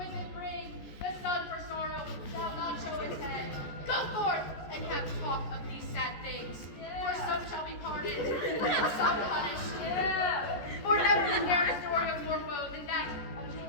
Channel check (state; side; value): late; right; 14 ms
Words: it bring. The sun for sorrow shall not show its head. Go forth and have talk of these sad things. For some shall be pardoned, and some punished. For never is there a story of more woe than that of